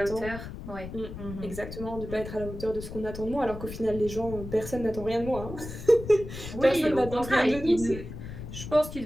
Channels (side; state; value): left; noise; rumble, 10 dB below the sound